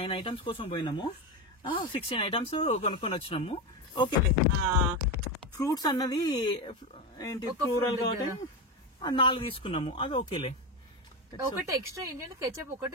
ఐటమ్స్ కోసం పోయినాము, 16 ఐటమ్స్ కొనుక్కొని వచ్చినాము. ఓకే, ఫ్రూట్స్ అన్నది ఏంటి ప్లూరల్ కాబట్టి 4 తీసుకున్నాము, అది ఓకేలే. ఒకటి ఎక్స్ట్రా ఏంటంటే కెచప్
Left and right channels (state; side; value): normal; both; correlation 0.15